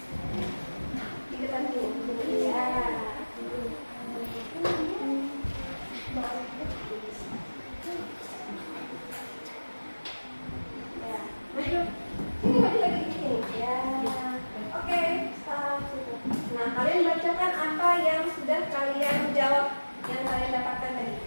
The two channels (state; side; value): inverted; both; correlation -1.00